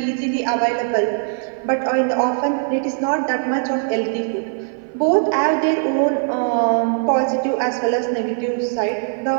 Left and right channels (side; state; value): left; silent; 56 dB below the other